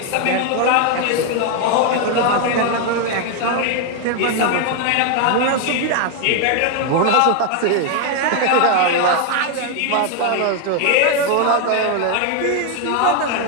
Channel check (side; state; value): both; different; correlation 0.01